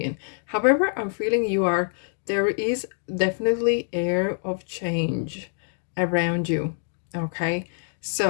However, I'm feeling you are there is definitely air of change around you. Okay,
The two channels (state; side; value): silent; right; 57 dB below the other